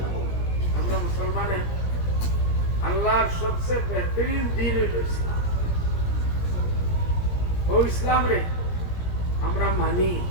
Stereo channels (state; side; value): late; right; 17 ms